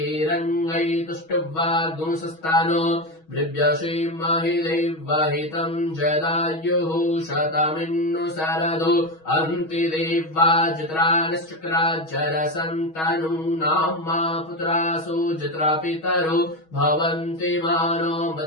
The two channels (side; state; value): right; late; 6.3 ms